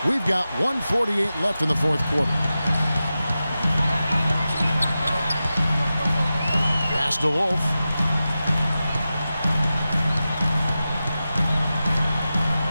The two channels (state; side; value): inverted; both; correlation -0.93